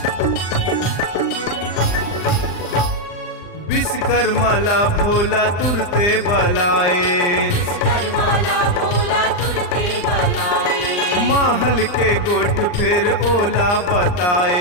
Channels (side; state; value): right; late; 39 ms